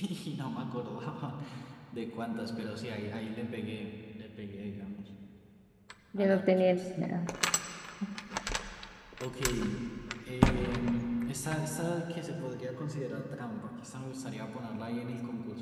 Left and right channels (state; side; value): identical; both; correlation 1.00